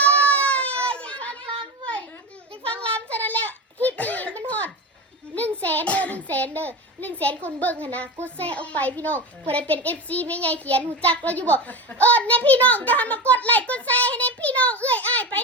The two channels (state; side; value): normal; both; correlation 0.24